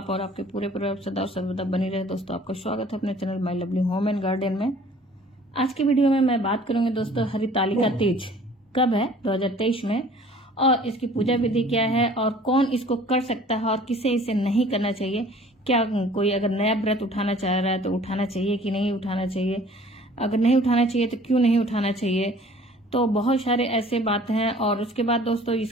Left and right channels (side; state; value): both; normal; correlation 0.51